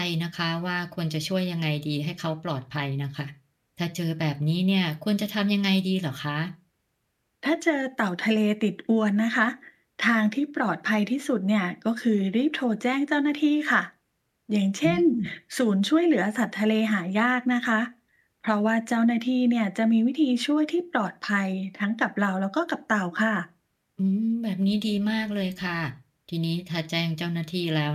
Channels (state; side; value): identical; both; correlation 1.00